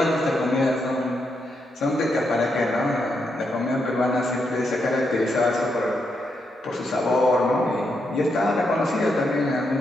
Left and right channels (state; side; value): normal; both; correlation 0.81